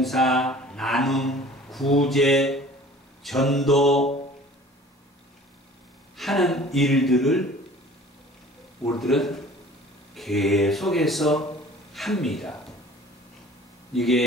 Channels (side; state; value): both; normal; correlation 0.47